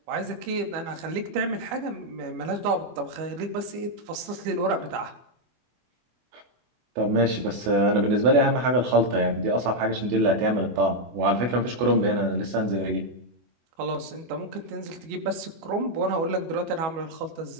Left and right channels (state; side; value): late; left; 24 ms